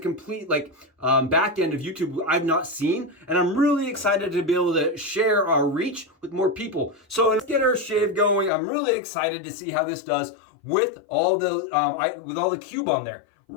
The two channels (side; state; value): right; drops out; at 8.5 s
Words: back end of YouTube I've not seen. And I'm really excited to be able to share our reach with more people. So let's get our shave going. I'm really excited to see how this does with all the cube on there.